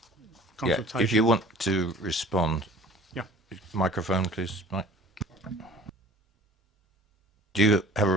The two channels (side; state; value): both; normal; correlation 0.46